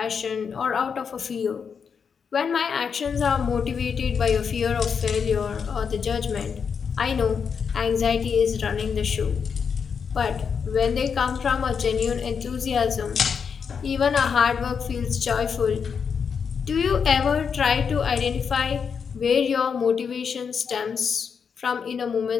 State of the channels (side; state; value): right; quieter; 6.4 dB